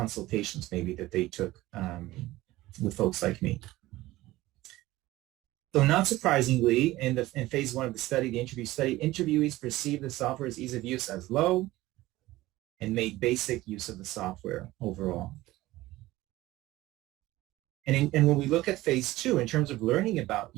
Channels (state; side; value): quieter; left; 17.5 dB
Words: maybe that they took with folks like me. So not surprisingly, in phase 1 of the study, the interview study, interviewees perceived the software's ease of use as low and made basic use of the software overall. And when we look at phase 2, in terms of learning about